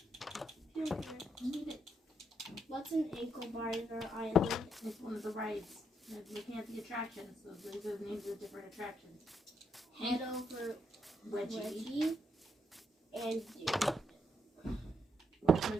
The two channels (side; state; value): both; normal; correlation 0.77